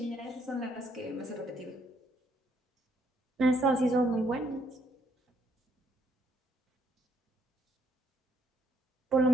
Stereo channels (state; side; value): normal; both; correlation 0.70